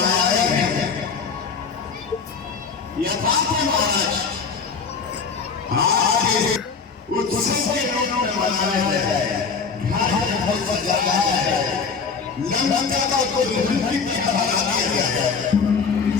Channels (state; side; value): quieter; right; 5.3 dB